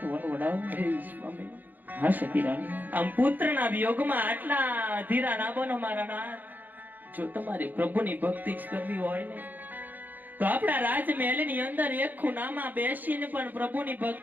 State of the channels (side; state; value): left; late; 0.085 ms